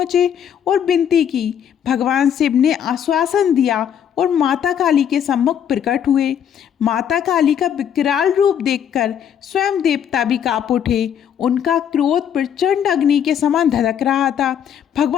और विनती की। भगवान शिव ने आश्वासन दिया और माता काली के सम्मुख प्रकट हुए। माता काली का विकराल रूप देखकर स्वयं देवता भी कांप उठे। उनका क्रोध प्रचंड अग्नि के समान धधक रहा था।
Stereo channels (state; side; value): quieter; right; 8.8 dB